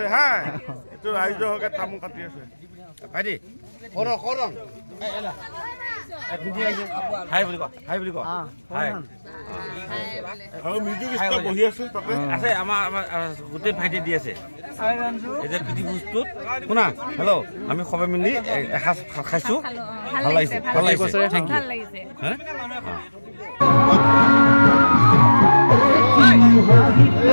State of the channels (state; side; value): inverted; both; correlation -1.00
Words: হা এইটো ৰাইজৰ হকে তামোল কাটি আছে ভাইটি কৰং কৰং হাই বুলি কয় হাই বুলি কয় হাই আৰু মিউজিক ষ্টাৰ বহি আছে তাতে আছে আমাৰ গোটেই ভাইটি দি আছে এই যে পিটি বস্তুত শুনা হেল্ল' আমি সবে মিলি এসাঁজ খাইছো ভাল লাগিছে ভাল লাগিছে থেংক ইউ হা